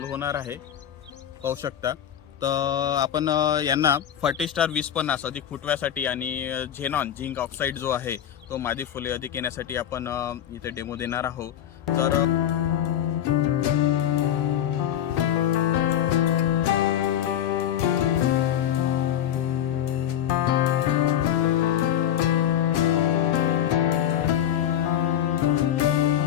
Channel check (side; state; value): right; quieter; 10.5 dB